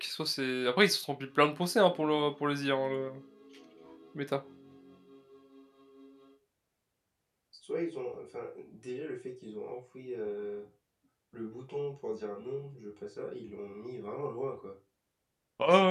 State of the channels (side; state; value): both; identical; correlation 1.00